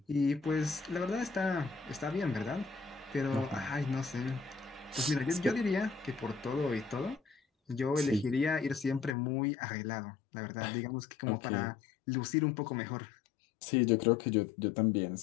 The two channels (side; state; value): right; drops out; at 9.2 s